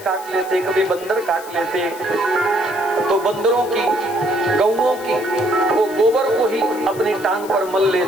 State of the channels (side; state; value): left; noise; hiss, 18 dB below the sound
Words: काट लेते, कभी बंदर काट लेते, तो बंदरों की, गौओं की वो गोबर को ही अपनी टांग पर मल